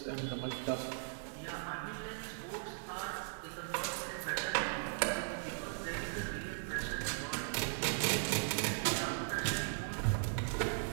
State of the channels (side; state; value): left; silent; digital silence